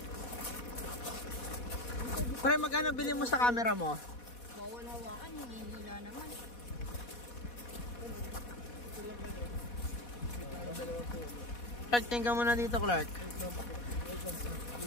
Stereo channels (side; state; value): right; late; 4.1 ms